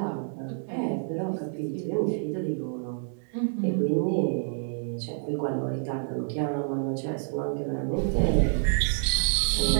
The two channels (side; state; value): left; silent; digital silence